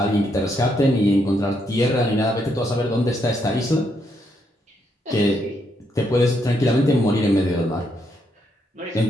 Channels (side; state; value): both; normal; correlation 0.77